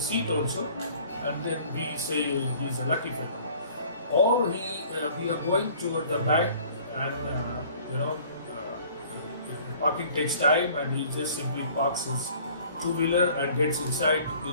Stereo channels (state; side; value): inverted; both; correlation -0.52